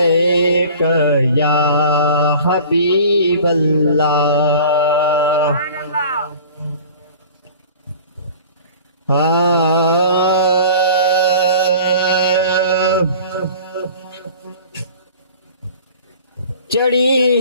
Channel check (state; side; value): inverted; both; correlation -0.44